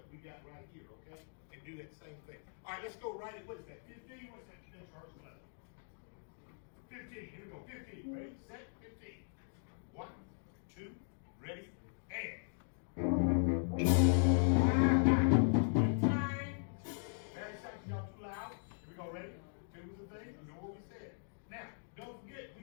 we got right here, okay, and do that same thing. All right, let's go right at, what is that? 15. What's that next rehearsal level? 15. Here we go. 15. Ready, set, 15. 1, 2, ready, and.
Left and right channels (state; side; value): silent; right; digital silence